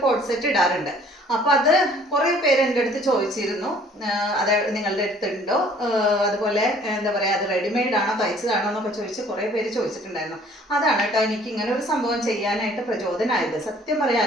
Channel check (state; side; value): normal; both; correlation 0.55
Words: കോഡ് സെറ്റ് ഇടാറുണ്ട്. അപ്പൊ അത് കുറെ പേര് എൻ്റെ അടുത്ത് ചോദിച്ചിരുന്നു, അത് നിങ്ങളുടെ അടുത്തുണ്ടോ, അതുപോലെ എന്താ പറയാ അത് റെഡിമെയ്ഡ് ആണോ തയ്ച്ചതാണോ എന്നൊക്കെ ചോദിച്ച് കുറെ പേര് ചോദിച്ചിട്ടുണ്ടായിരുന്നു. അതാണ് കേട്ടോ എനിക്ക് ഇങ്ങനെ ഒരു സംഭവം ചെയ്യാനായിട്ട് പ്രചോദനമായത്. സത്യം